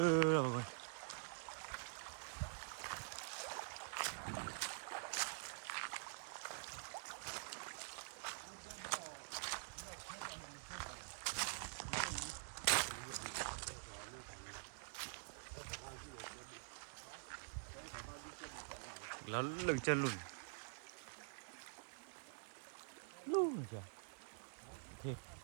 rồi mọi người. Nó lưng chân lùn. Lùn rồi.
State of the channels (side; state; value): left; silent; digital silence